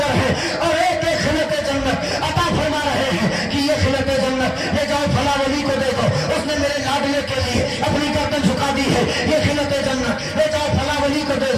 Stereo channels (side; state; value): both; identical; correlation 1.00